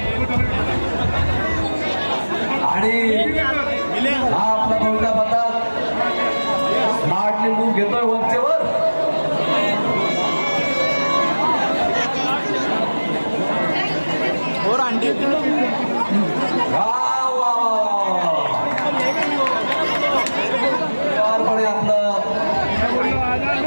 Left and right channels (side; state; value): both; inverted; correlation -1.00